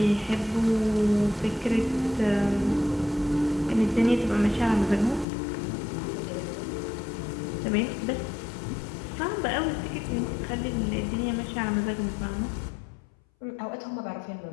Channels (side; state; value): right; drops out; at 5.2 s